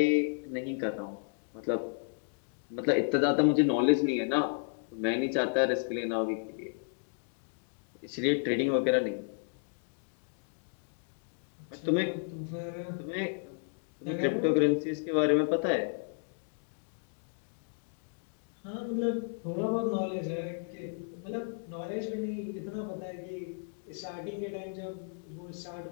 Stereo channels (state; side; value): silent; right; digital silence